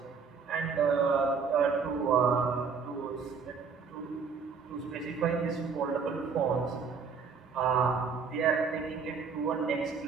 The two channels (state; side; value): quieter; left; 5.6 dB